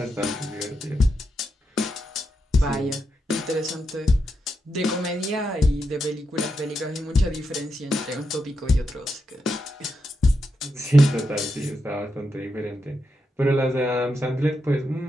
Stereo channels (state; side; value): normal; both; correlation 0.85